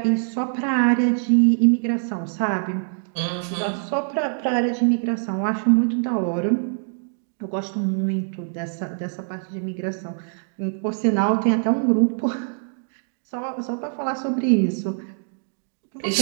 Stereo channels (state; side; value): silent; left; digital silence